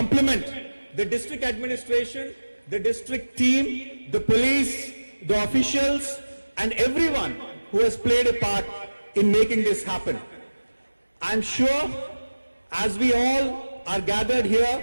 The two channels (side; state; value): both; inverted; correlation -1.00